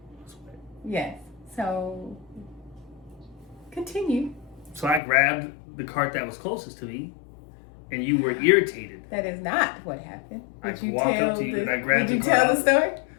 was wet. Yes. So continue. So I grabbed the cart that was closest to me, and you were irritated. That is not what happened. I walked up to you and I grabbed the cart. Did you tell the story?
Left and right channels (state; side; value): drops out; right; at 5.0 s